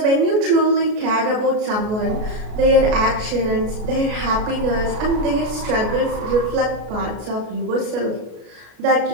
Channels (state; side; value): late; left; 33 ms